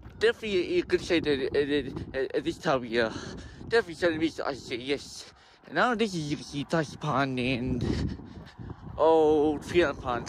Definitely you could say that at this time of year. Definitely Southern Beach, I say yes. And now this is you can see Tassie Pond and Field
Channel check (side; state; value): both; identical; correlation 1.00